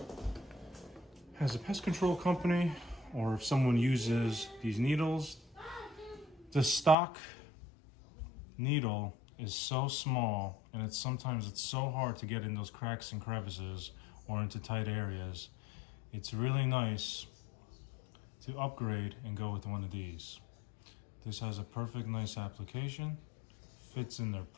has a pest control company or if someone uses these needles, the stock needle is so small and sometimes it's so hard to get in those cracks and crevices or into tight areas. It's really nice to upgrade and go with one of these. This has a perfect nice application, fits in there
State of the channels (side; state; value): right; drops out; at 7.0 s